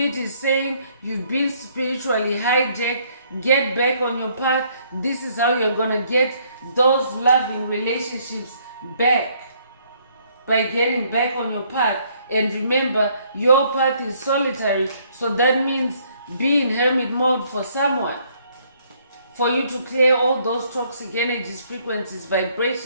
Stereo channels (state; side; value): inverted; both; correlation -0.66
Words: is saying you've been spiritually hijacked. Get back on your path. This is how you're going to get those loving relationships back, by getting back on your path. And remember, your path is solitary, so that means be in hermit mode for someone, for you to clear all those toxic energies, frequencies,